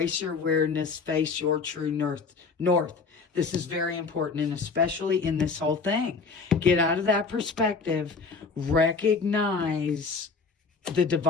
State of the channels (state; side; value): quieter; right; 4.7 dB